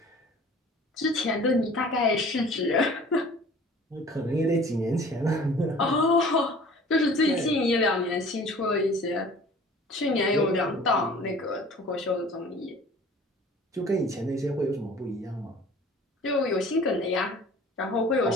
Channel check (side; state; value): both; normal; correlation 0.47